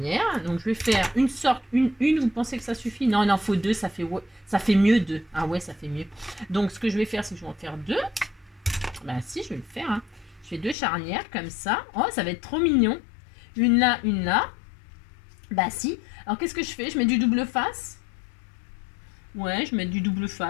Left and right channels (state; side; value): drops out; right; at 10.8 s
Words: Donc, je vais faire une sorte, une, vous pensez que ça suffit? Non, il en faut deux, ça fait mieux deux. Ah ouais, ça fait mieux. Donc, ce que je vais faire, c'est que je vais en faire deux. Bah si, je vais le faire. Hein. Je fais deux charnières, comme ça. Oh, ça va être trop mignon. Une là, une là. Bah si. Alors, qu'est-ce que je fais? Je mets du double face. Ouais, je mets du double